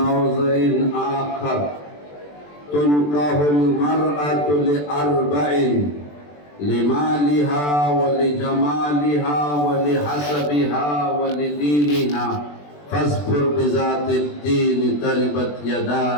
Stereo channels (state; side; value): late; right; 20 ms